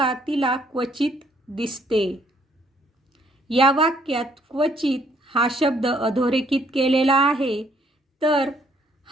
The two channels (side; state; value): both; normal; correlation 0.66